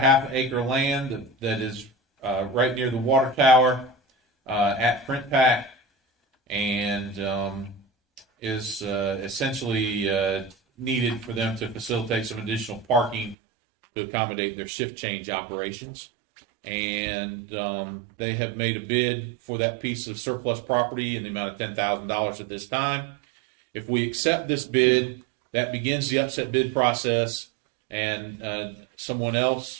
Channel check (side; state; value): left; drops out; at 13.4 s